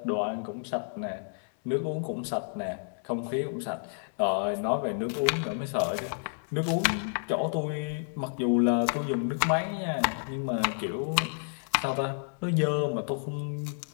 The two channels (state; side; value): silent; right; digital silence